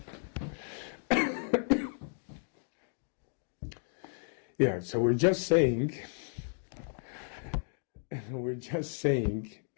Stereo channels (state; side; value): silent; right; digital silence